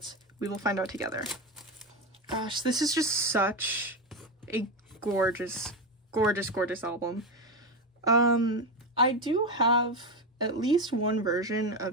we will find out together. Gosh, this is just such a gorgeous, gorgeous, gorgeous album. I do have at least one version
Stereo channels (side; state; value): both; normal; correlation 0.14